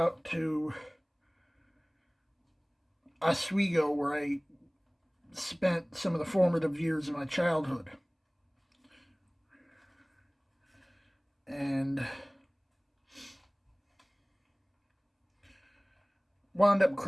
to Oswego where I spent some of the formative years of my childhood. And wound up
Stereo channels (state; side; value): identical; both; correlation 1.00